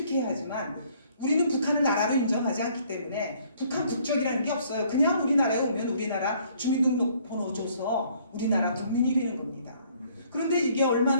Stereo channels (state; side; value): inverted; both; correlation -0.62